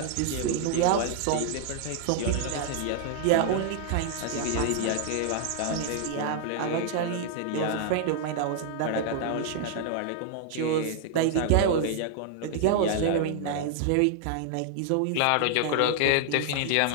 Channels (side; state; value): both; different; correlation 0.00